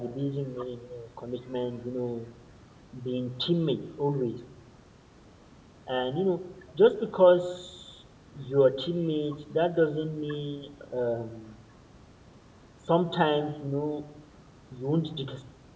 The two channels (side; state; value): both; identical; correlation 1.00